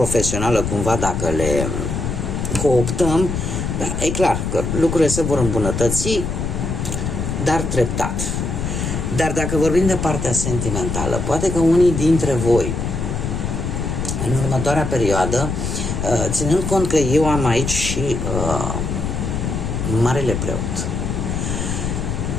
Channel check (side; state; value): left; noise; rumble, 2 dB below the sound